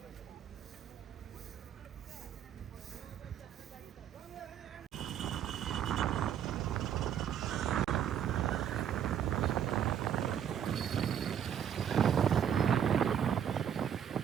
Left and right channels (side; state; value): left; quieter; 9.1 dB